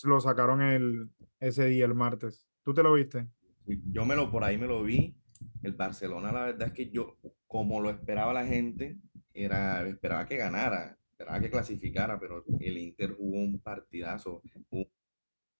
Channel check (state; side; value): inverted; both; correlation -1.00